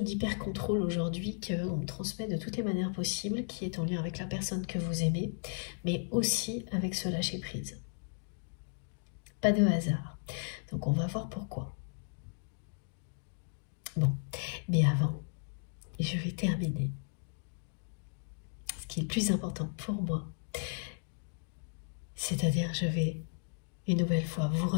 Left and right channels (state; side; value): silent; right; digital silence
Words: d'hyper-contrôle aujourd'hui qu'on me transmet de toutes les manières possibles, qui est en lien avec la personne que vous aimez, mais aussi avec ce lâcher prise. Pas de hasard. Donc on va voir pourquoi. Bon, mais avant, je vais terminer. Ce qui est le plus important pour moi, c'est-à-dire je vais une nouvelle fois vous